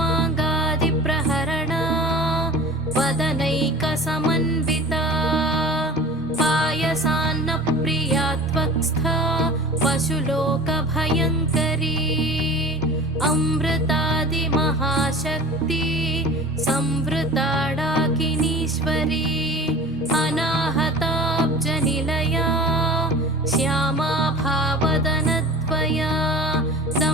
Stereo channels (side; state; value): both; normal; correlation 0.39